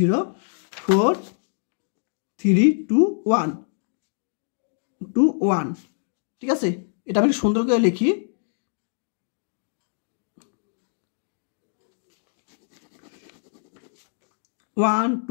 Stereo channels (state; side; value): silent; right; digital silence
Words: 4 3 2 1 2 1, ঠিক আছে। এটা আমি সুন্দর করে লিখি। ওয়ান